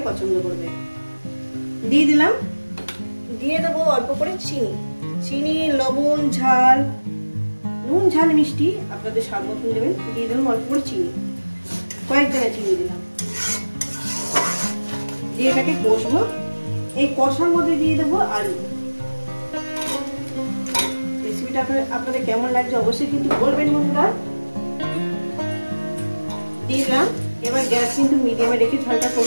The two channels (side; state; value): both; inverted; correlation -1.00